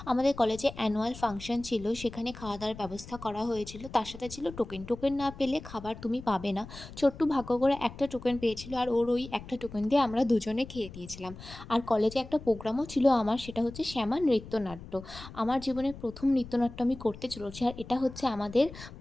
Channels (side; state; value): left; noise; rumble, 15 dB below the sound